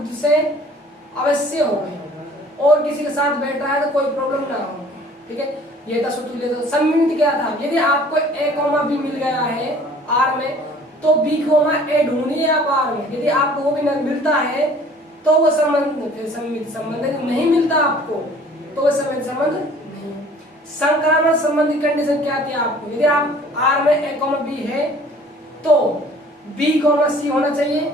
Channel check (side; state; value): both; normal; correlation 0.52